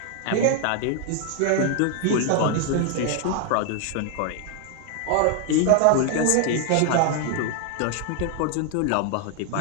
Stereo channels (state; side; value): different; both; correlation 0.00